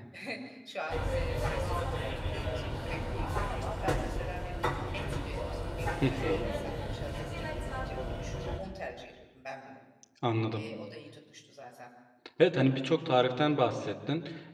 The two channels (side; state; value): both; identical; correlation 1.00